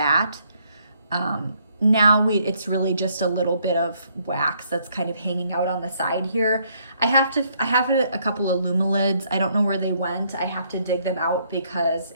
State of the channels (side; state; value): both; inverted; correlation -0.69